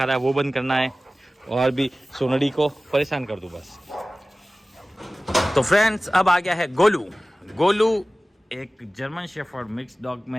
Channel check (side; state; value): both; normal; correlation 0.97